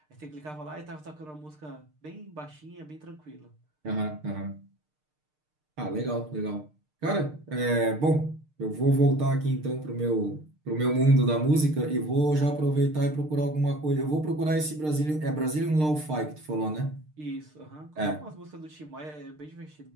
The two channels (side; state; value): left; late; 6.6 ms